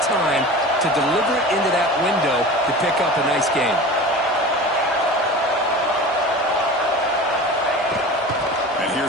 to deliver it into that window to pick up a nice gain. And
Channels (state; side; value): normal; both; correlation 0.35